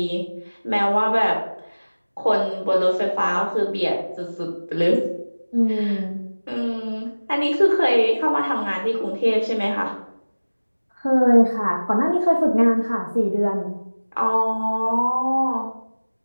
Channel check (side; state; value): both; inverted; correlation -1.00